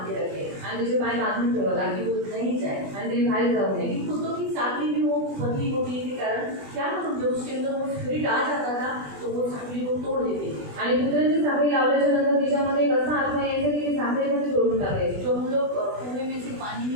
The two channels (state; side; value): late; left; 20 ms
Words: के रखे आणि तिचे पाय बांधून ठेवला ताकि वो नहीं जाए. आणि तिने बाहेर जाऊ नये. लेकिन कुत्तों की साखली भी वो पतली होने के कारण क्या मालूम, जब उसके अंदर वो स्पिरिट आ जाता था तो वो साखली को तोड़ देती. आणि कुत्र्यांची साखळी लावल्याच्या नंतर तिच्यामध्ये एक असा आत्मा यायचा की ती साखळीमध्ये तोडून टाकायची. जो हम लोग कुएं में से पानी